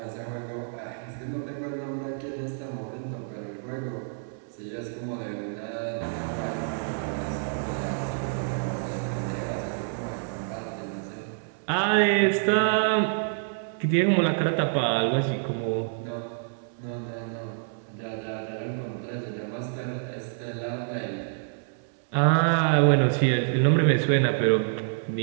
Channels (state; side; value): silent; left; 60 dB below the other